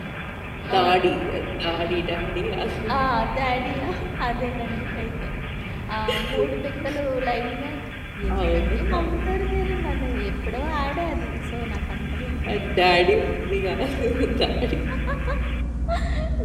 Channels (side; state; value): both; identical; correlation 1.00